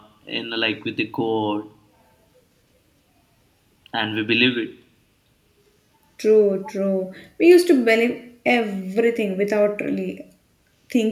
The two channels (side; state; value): both; identical; correlation 1.00